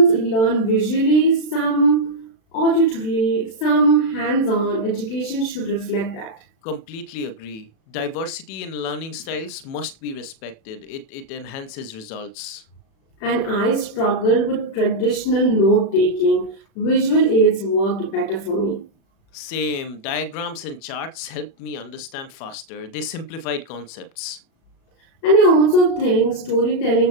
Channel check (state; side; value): late; right; 36 ms